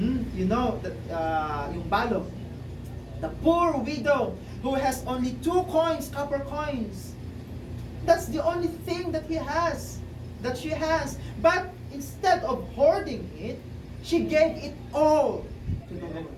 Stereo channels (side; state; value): both; identical; correlation 1.00